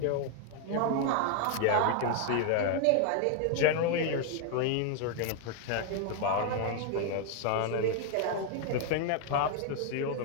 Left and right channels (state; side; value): different; both; correlation 0.00